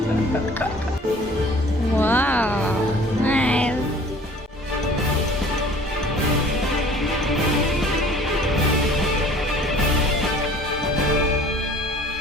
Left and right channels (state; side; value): normal; both; correlation 0.50